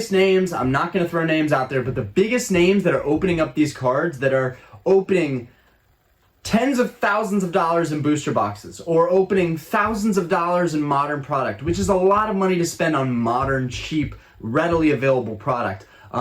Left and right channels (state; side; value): identical; both; correlation 1.00